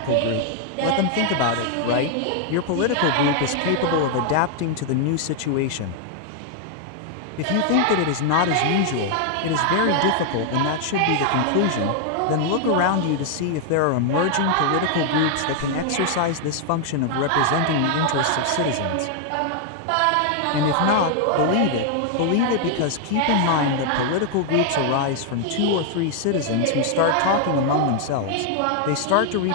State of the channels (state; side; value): different; both; correlation 0.00